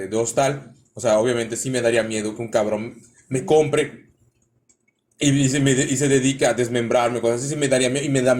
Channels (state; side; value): identical; both; correlation 1.00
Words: Hostal, o sea, obviamente sí me daría miedo que un cabrón me compre y se dedica a desmembrarme, cosas así, sí me daría miedo, y me da